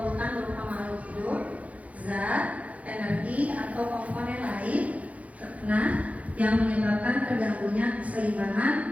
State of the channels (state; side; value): late; left; 0.067 ms